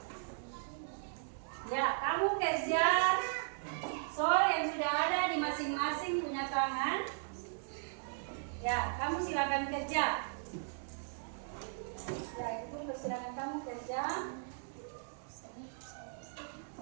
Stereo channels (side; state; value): left; silent; digital silence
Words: Ya, kamu kerja soal yang sudah ada di masing-masing punya tangan. Ya, kamu silakan kerja. Ya, itu persilakan kamu kerja.